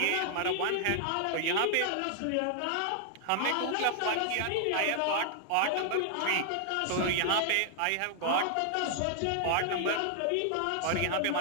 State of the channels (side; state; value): both; different; correlation 0.00